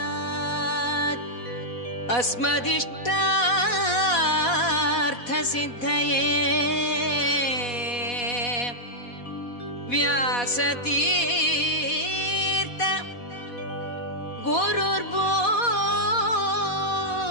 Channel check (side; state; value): right; late; 4.1 ms